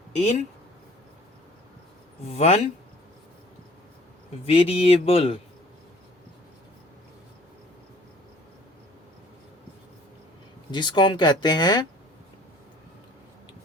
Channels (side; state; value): both; normal; correlation 0.53